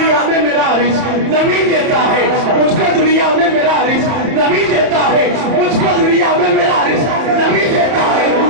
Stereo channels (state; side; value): late; left; 30 ms